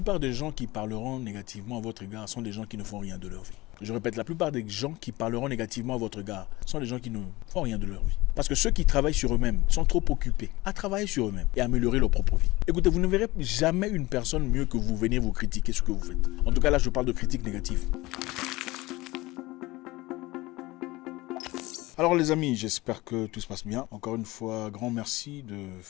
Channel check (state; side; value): quieter; right; 20.3 dB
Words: des gens qui parleront négativement à votre égard sont des gens qui ne font rien de leur vie. Je répète, la plupart des gens qui parleront négativement à votre égard sont des gens qui ne font rien de leur vie. Parce que ceux qui travaillent sur eux-mêmes sont trop occupés à travailler sur eux-mêmes et à améliorer leur propre vie. Écoutez, vous ne verrez jamais une personne mieux que vous venir vous critiquer ce que vous faites. En tout cas, là, je parle de critiques négatives. Alors les amis, j'espère que tout se passe bien. Encore une fois, grand merci de